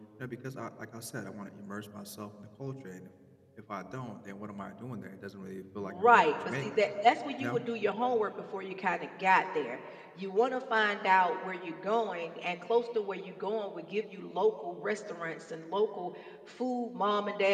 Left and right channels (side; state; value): both; identical; correlation 1.00